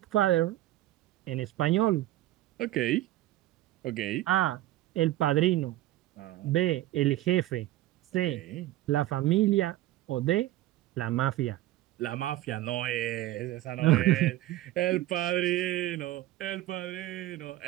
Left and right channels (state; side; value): quieter; left; 15.4 dB